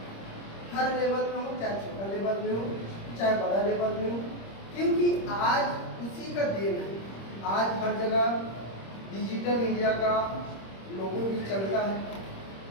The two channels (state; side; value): late; right; 26 ms